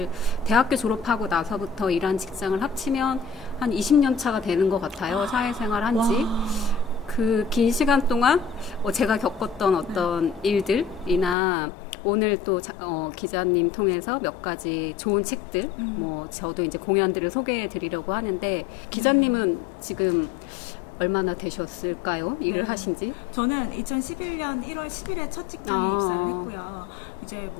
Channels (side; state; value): right; drops out; at 11.4 s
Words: 대학교 졸업하고 나서부터 일한 직장을 합치면 한 20년 차가 되는 것 같아요. 사회생활 한지. 그 긴 시간 동안 제가 겪었던 어떤 일들이나 오늘 또 기자님 통해서 몇 가지 좋은 책들, 저도 이제 공연들을 소개해 드리려고 하는데 기자님은 지금 얼마나 되셨을까요? 일을 하신지? 저는 2011년 1월 10일에 첫 직장에 입사를 했고요. 이제